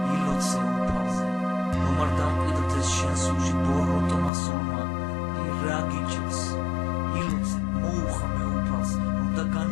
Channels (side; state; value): right; drops out; at 4.3 s